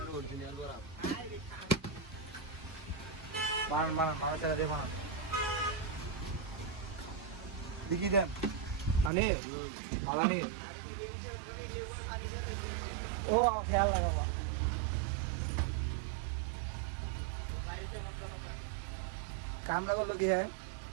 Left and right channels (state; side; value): drops out; left; at 9.1 s